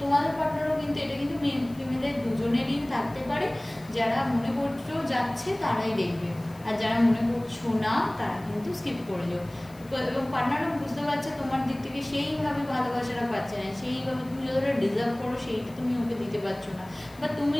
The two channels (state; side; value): noise; left; hiss, 25 dB below the sound